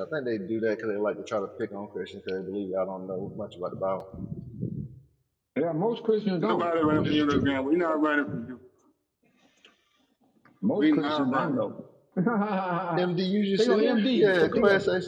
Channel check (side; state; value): both; identical; correlation 1.00